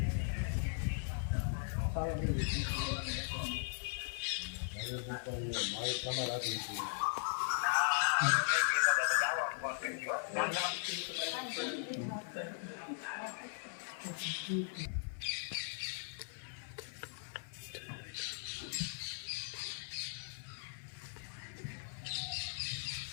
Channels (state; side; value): silent; right; 52 dB below the other